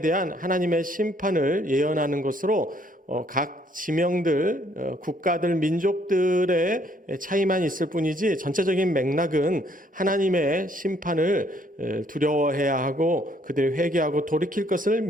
대한 하나님의 심판을 예언하는 것으로 각 지명들, 국가들, 민족들의 차이만 있을 뿐이지 전체적인 맥락은 하나님의 심판을 두려워해야 하고 그들이 회개하고 돌이킬 것을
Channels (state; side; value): normal; both; correlation 0.66